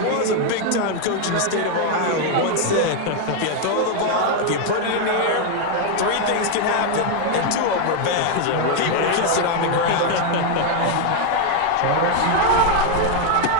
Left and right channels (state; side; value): different; both; correlation 0.01